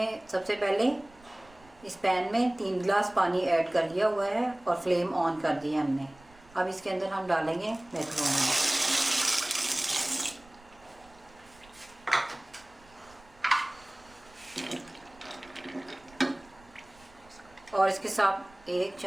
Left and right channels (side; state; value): right; noise; rumble, 26 dB below the sound